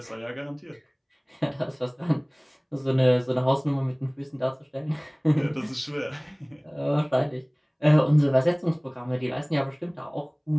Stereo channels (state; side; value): identical; both; correlation 1.00